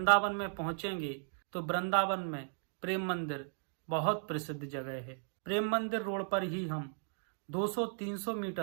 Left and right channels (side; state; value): left; silent; digital silence